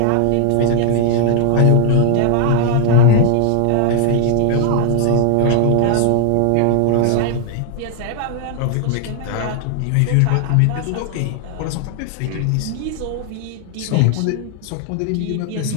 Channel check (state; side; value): different; both; correlation 0.00